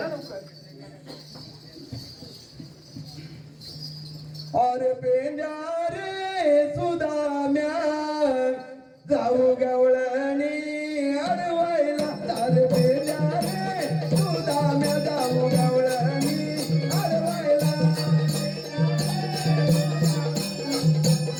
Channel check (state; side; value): identical; both; correlation 1.00